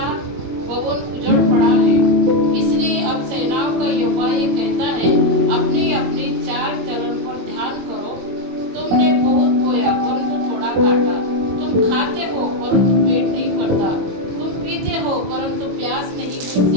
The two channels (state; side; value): late; left; 21 ms